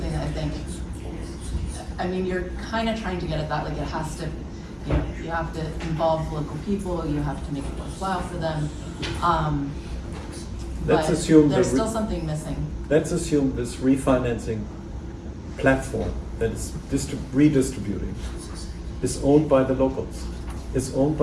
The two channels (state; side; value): identical; both; correlation 1.00